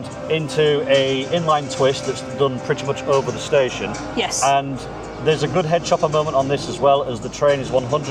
into a inline twist that's done pretty much over the station. Yes. And there's a good head chopper moment on this as well, as the train is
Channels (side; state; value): both; identical; correlation 1.00